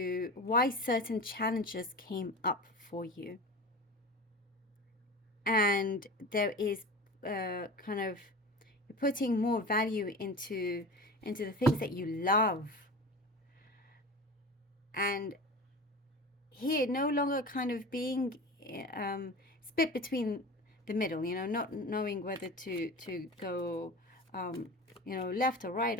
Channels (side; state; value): both; normal; correlation 0.32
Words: why certain challenges came up for you. And there is kind of, you're putting more value into the things that you love. And here, no longer kind of being split between the middle, not knowing whether to go, left or right